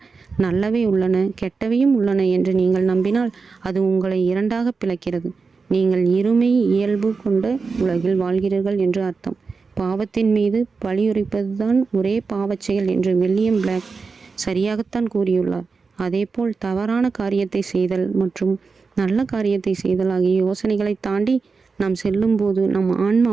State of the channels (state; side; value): quieter; left; 4.7 dB